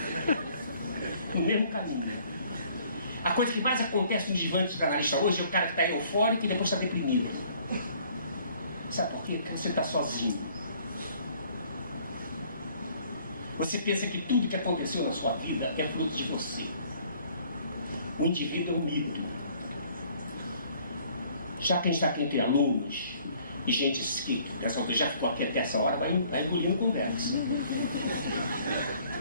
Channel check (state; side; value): inverted; both; correlation -0.58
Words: No mesmo caminho. A coisa que mais acontece nos divãs dos analistas hoje é o cara que está eufórico e depois está deprimido. Sabe por quê? Porque você está sozinho. Você pensa que tudo que aconteceu na sua vida é fruto de você. O indivíduo é um mito. Já quem está aqui entre alunos e gente que já ficou aqui até essa hora, vai engolindo conversa.